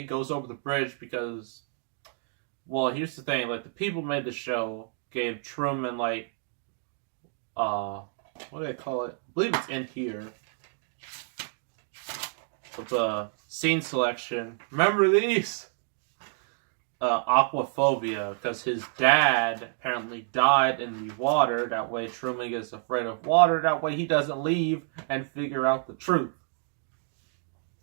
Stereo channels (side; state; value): left; silent; 56 dB below the other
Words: goes over the bridge because, well, here's the thing, like, the people who made the show gave Truman, like, what do they call it? I believe it's in here. With the scene selection. Remember these? Aquaphobia, because his dad apparently died in the water. That way Truman gets afraid of water. That way he doesn't leave and figure out the truth.